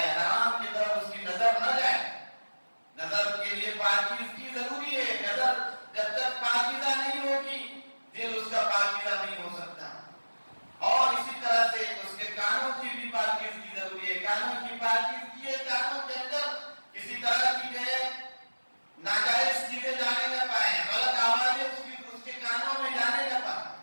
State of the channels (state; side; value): inverted; both; correlation -1.00